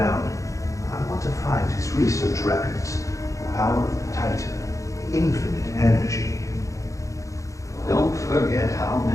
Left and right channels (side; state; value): right; late; 0.15 ms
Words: I want to find his research records. The power of the Titan, infinite energy. Don't forget how